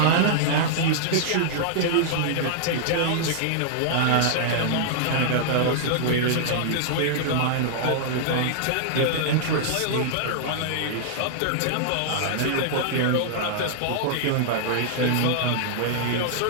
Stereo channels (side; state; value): both; different; correlation -0.01